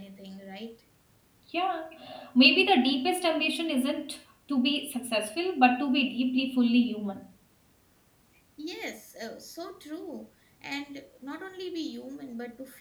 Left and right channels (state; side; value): identical; both; correlation 1.00